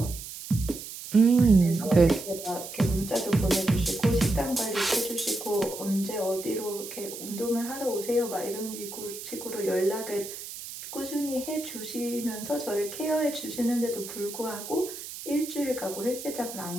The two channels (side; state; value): right; noise; hiss, 11 dB below the sound